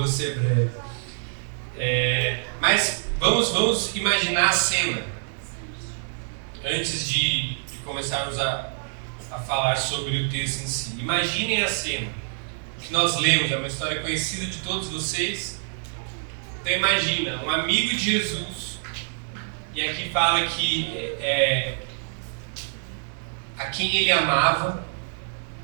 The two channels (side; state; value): left; silent; digital silence